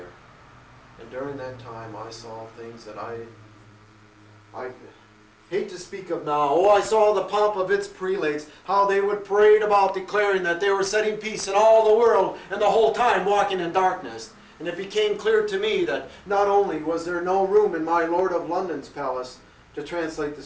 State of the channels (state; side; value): identical; both; correlation 1.00